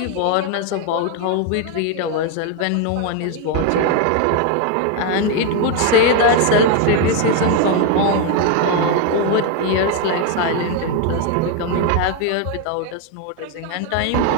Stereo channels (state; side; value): different; both; correlation 0.01